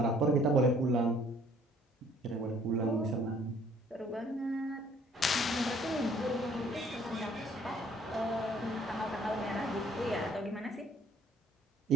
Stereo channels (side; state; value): both; normal; correlation 0.59